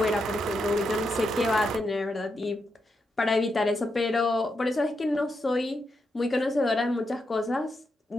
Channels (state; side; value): normal; both; correlation 0.84